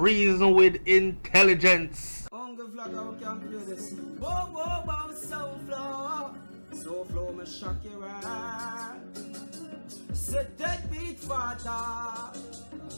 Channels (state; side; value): inverted; both; correlation -1.00